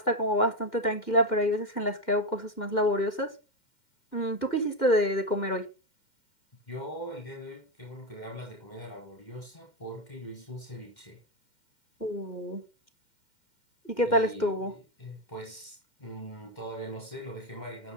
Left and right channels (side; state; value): right; late; 2.1 ms